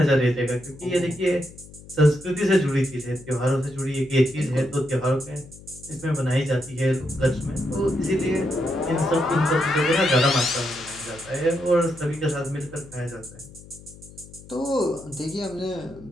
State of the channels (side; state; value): left; noise; hum, 19 dB below the sound